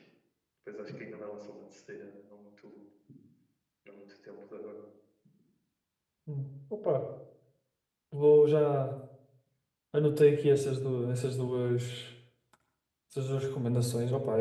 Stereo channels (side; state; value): both; identical; correlation 1.00